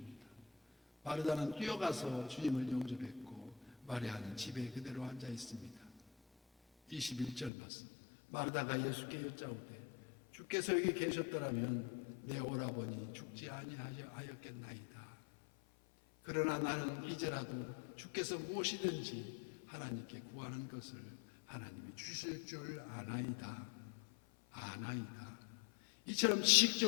마르다는 뛰어가서 주님을 영접했고 마리아는 집에 그대로 앉아 있습니다. 21절 말씀. 마르다가 예수께 여짜오되 주께서 여기 계셨더라면 내 오라버니 죽지 아니하였겠나이다. 그러나 나는 이제라도 주께서 무엇이든지 하나님께 구하는 것을 하나님이 주실 줄 아나이다. 이처럼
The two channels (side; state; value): right; drops out; at 7.5 s